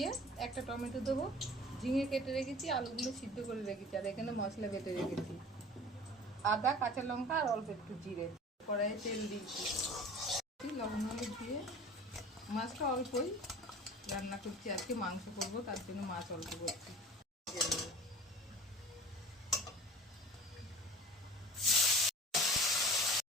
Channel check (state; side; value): normal; both; correlation 0.42